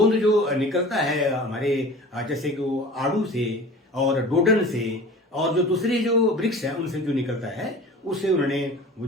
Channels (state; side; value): normal; both; correlation 0.40